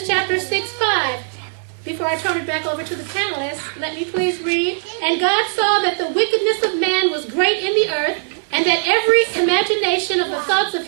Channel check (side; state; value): left; silent; digital silence